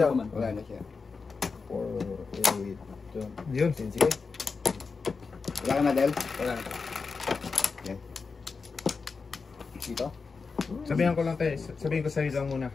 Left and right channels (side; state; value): right; quieter; 4.7 dB